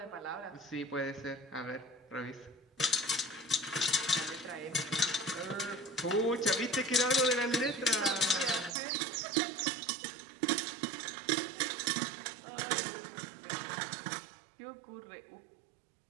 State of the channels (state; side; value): drops out; left; at 8.8 s